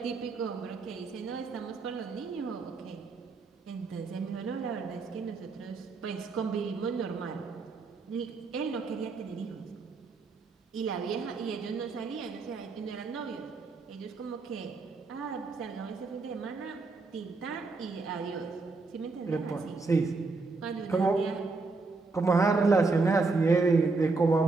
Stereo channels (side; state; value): left; quieter; 3.9 dB